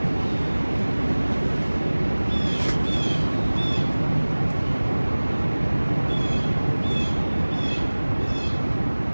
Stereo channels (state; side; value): inverted; both; correlation -1.00